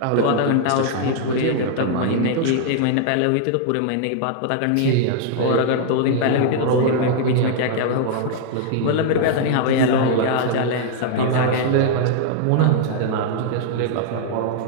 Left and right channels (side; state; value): both; different; correlation -0.01